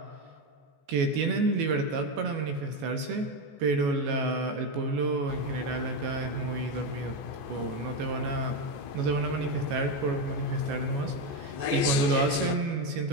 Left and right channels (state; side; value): late; left; 14 ms